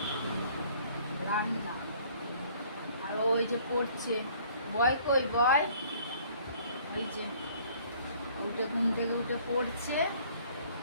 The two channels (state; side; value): inverted; both; correlation -0.57